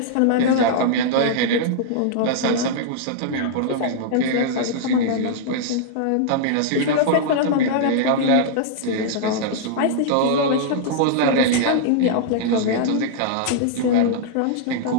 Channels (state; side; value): different; both; correlation -0.01